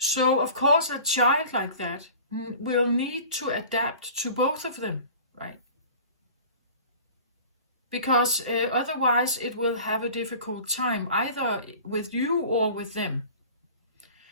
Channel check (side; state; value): both; inverted; correlation -0.41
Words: of course, a child like that will need to adapt to both of them, right? Because otherwise it will have a difficult time, either with you or with them.